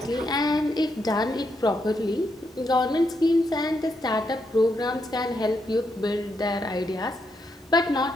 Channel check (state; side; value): normal; both; correlation 0.80